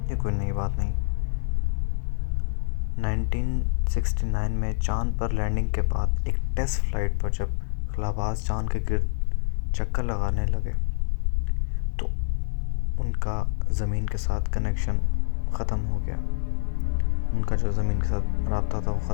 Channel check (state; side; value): silent; right; 61 dB below the other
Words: یہ کوئی نئی بات نہیں۔ 1969 میں چاند پر لینڈنگ کے بعد ایک ٹیسٹ فلائٹ پر جب خلا باز چاند کے گرد چکر لگانے لگے تو ان کا زمین کے ساتھ کنیکشن ختم ہو گیا، ان کا جو زمین کے ساتھ رابطہ تھا وہ